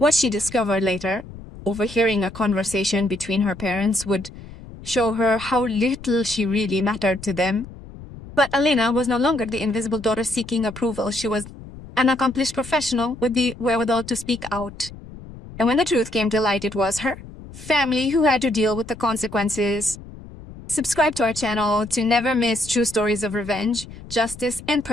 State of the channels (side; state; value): left; noise; rumble, 16 dB below the sound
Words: she discovered later, overhearing a conversation between her parents, would show her how little she really mattered to them. But Elena was no longer the invisible daughter seeking approval. She was an accomplished professional with the wherewithal to speak out. And when the truth came to light, it was her family who had to deal with the consequences. Subscribe to our channel to never miss true stories of revenge, justice, and